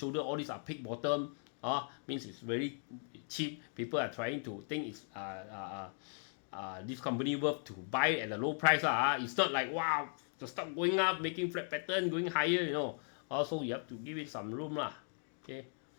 all these are pick bottom. Means it's very cheap. People are trying to think it's this company worth to buy at a low price. It's not like wow, to stop going up, making flat pattern, going higher, you know. Also you have to give it some room lah. Okay.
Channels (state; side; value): silent; right; 53 dB below the other